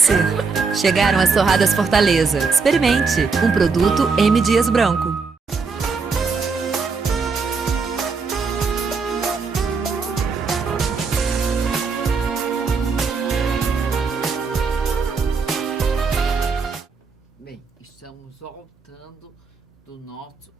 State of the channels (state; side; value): quieter; left; 4.8 dB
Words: Chegaram as torradas Fortaleza. Experimente! Um produto M. Dias Branco. Bem, estamos voltando do nosso